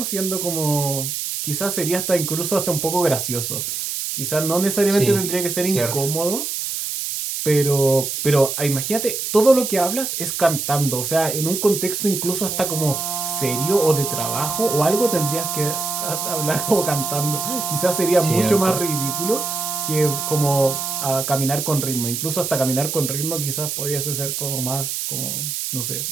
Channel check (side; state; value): right; noise; hiss, 3 dB below the sound